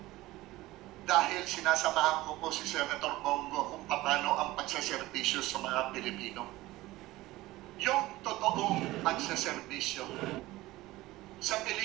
dahil sinasamahan ko po si Senator Bongo kung paano ang pagsaserbisyo sa mga Pilipino. Yung totoong pagsaserbisyo. Sa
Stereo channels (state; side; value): quieter; left; 18.1 dB